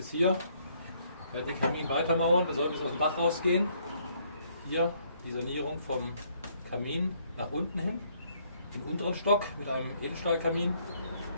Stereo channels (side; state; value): both; inverted; correlation -0.68